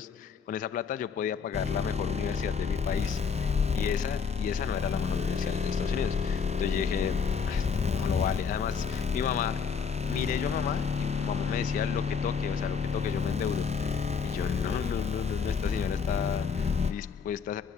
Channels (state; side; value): quieter; right; 6.1 dB